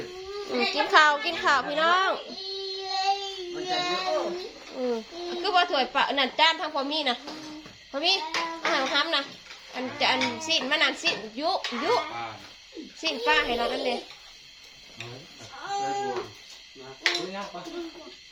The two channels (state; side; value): identical; both; correlation 1.00